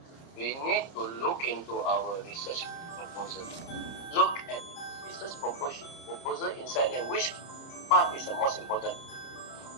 we need to look into our research proposal. Look at research proposal inside there. Which part is the most important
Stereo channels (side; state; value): right; late; 30 ms